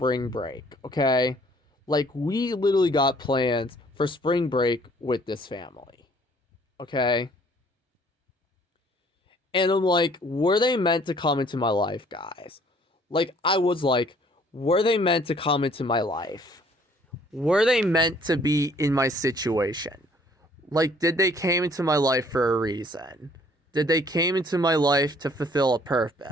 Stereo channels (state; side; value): normal; both; correlation 0.59